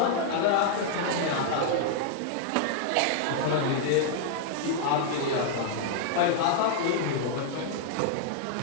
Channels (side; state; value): both; different; correlation -0.01